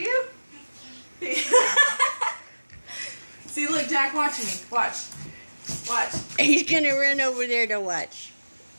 See, look, Jack, watching me. Watch. He's gonna run over there to watch.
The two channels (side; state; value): both; inverted; correlation -1.00